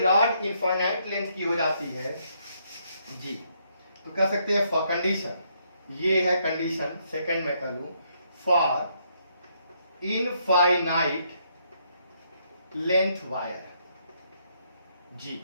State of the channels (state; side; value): inverted; both; correlation -0.73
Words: इनफाइनाइट लेंथ की हो जाती है जी, तो कह सकते हैं फॉर कंडीशन, ये है कंडीशन सेकंड में कर लूं, फॉर इनफाइनाइट लेंथ वायर, जी